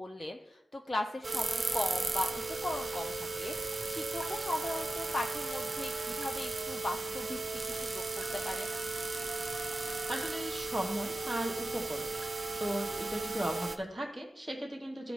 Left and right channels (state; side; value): normal; both; correlation 0.92